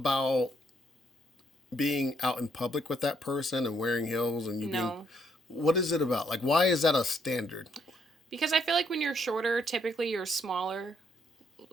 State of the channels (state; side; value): normal; both; correlation 0.71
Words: being out in public with that person and wearing heels and you being? no. What is it about? Like, why is that a standard? Because I feel like when you're shorter, typically you're smaller,